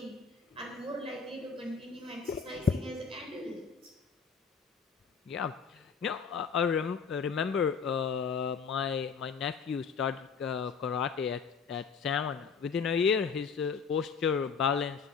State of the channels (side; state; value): right; quieter; 5.8 dB